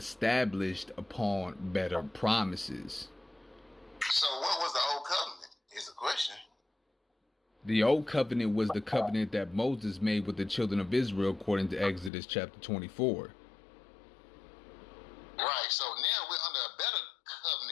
upon better promises. So what was the old covenant is the question. The old covenant was the covenant that Moses made with the children of Israel, according to Exodus chapter 24. Right, so now we're under a better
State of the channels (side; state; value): right; drops out; at 12.1 s